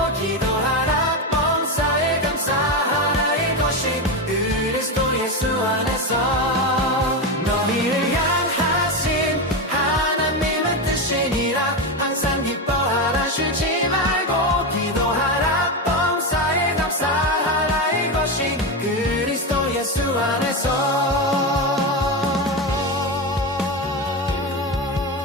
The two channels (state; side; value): normal; both; correlation 0.14